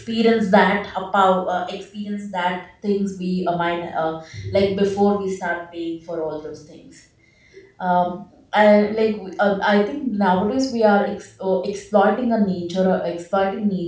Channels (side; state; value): both; identical; correlation 1.00